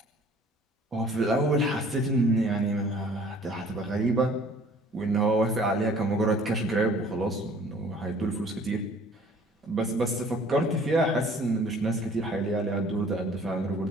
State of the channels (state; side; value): normal; both; correlation 0.53